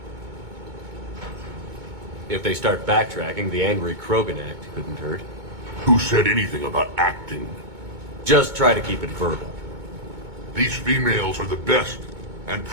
If they start backtracking, the angry Krogan act couldn't hurt. Who said anything about acting? Just try to keep it verbal. These females are the best, and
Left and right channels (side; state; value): left; late; 2.2 ms